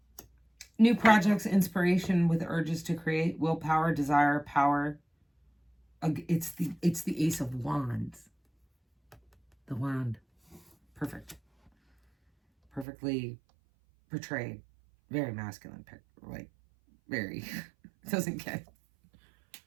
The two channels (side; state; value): left; drops out; at 12.9 s